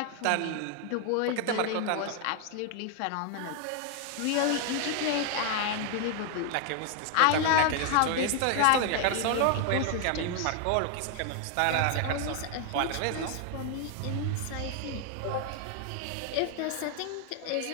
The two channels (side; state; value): both; different; correlation 0.00